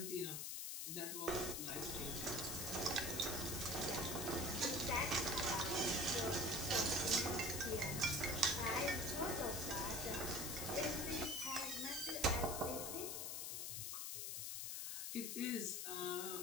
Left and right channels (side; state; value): left; noise; hiss, 3 dB below the sound